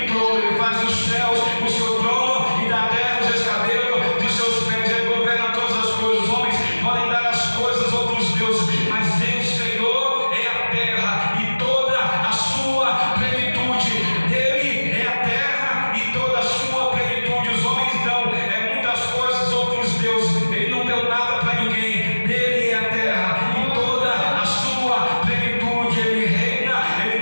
trono. Ele faz os céus o seu trono e da terra os escabelos dos seus pés. Ele governa todas as coisas. Os homens podem dar as coisas a outros deuses, mas ele, o Senhor, é a terra e toda a sua plenitude. Ele é a terra e toda a sua plenitude. Os homens dão muitas coisas a outros deuses. Ele não deu nada para ninguém. Dele é a terra e toda a sua plenitude. Ele reina,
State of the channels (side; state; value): both; inverted; correlation -1.00